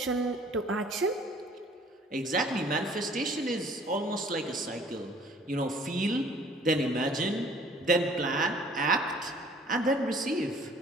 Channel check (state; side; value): normal; both; correlation 0.55